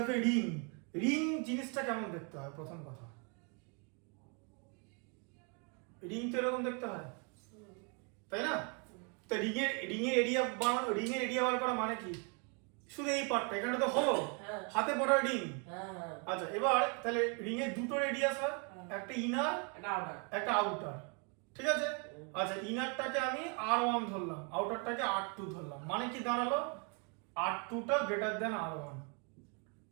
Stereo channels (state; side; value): quieter; left; 36.2 dB